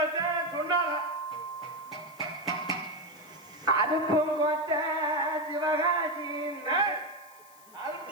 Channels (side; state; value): left; noise; hiss, 24 dB below the sound